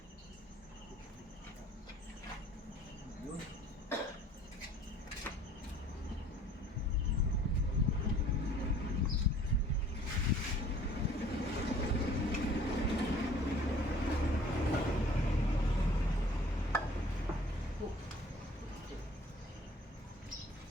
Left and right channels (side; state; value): both; normal; correlation 0.52